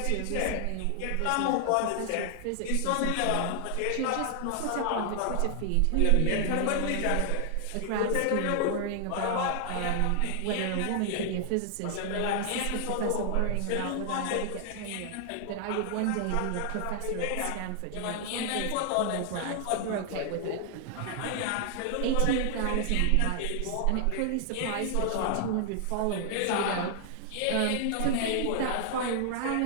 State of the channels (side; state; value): both; different; correlation 0.00